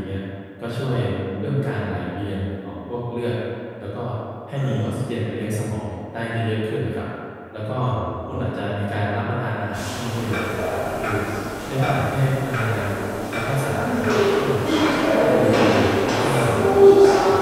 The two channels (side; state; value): both; identical; correlation 1.00